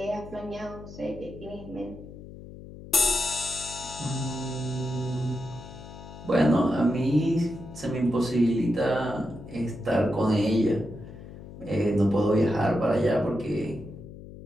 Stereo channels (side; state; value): left; noise; hum, 15 dB below the sound